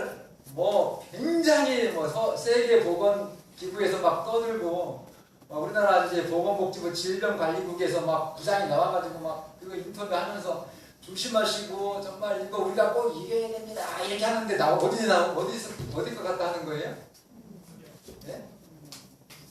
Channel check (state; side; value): identical; both; correlation 1.00